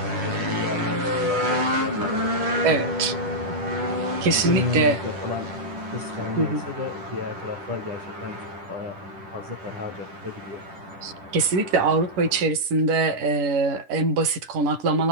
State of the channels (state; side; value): late; left; 10 ms